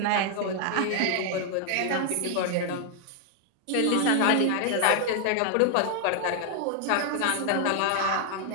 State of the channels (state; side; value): different; both; correlation 0.00